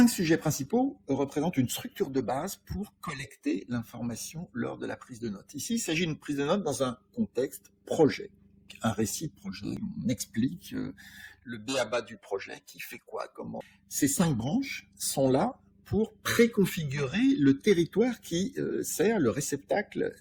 sujets principaux représentent une structure de base pour collecter l'information lors de la prise de notes. Ici, il s'agit d'une prise de notes dans un contexte projet, un récit de projet. On explique le b.a.-ba du projet, qui fait quoi, comment. Ces 5 branches sont là pour préconfigurer le territoire qui sert le réceptacle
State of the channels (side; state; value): both; identical; correlation 1.00